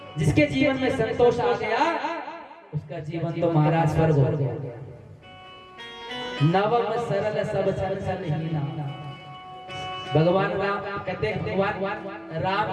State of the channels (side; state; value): both; identical; correlation 1.00